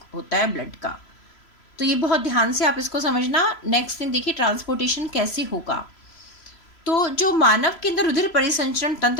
होता है ब्लड का। तो ये बहुत ध्यान से आप इसको समझना। नेक्स्ट थिंग देखिए, ट्रांसपोर्टेशन कैसे होगा। तो जो मानव के अंदर रुधिर परिसंचरण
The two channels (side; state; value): right; late; 3.0 ms